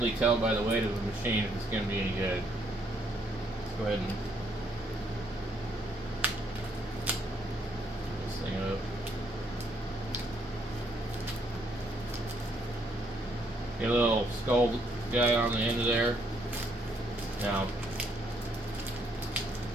tell by the weight of the machine if it's going to be any good. Let's go ahead and this thing up. Get a little skull guy on the end of there. Now,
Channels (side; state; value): both; normal; correlation 0.70